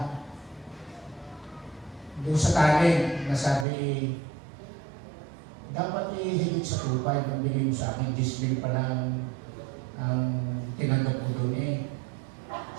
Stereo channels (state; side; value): drops out; left; at 3.7 s